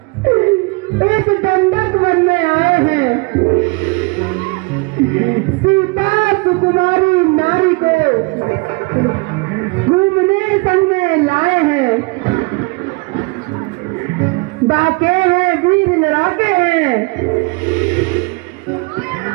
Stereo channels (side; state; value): left; quieter; 28.0 dB